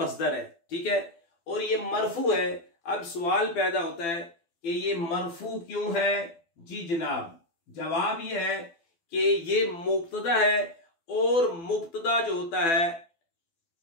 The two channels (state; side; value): late; right; 12 ms